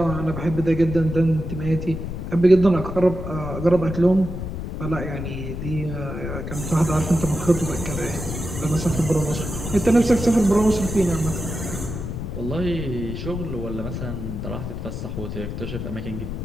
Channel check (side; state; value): left; noise; rumble, 6 dB below the sound